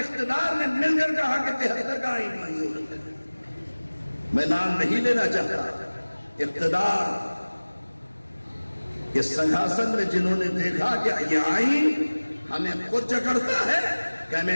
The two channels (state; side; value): inverted; both; correlation -1.00